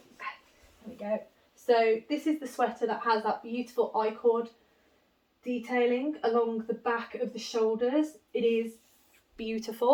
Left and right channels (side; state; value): both; identical; correlation 1.00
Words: There we go. So this is the sweater that has that beautiful I-cord detailing along the back of the shoulders. It is